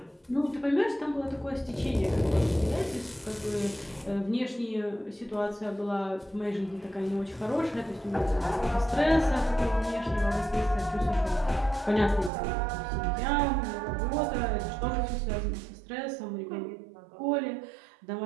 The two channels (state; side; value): drops out; left; at 12.3 s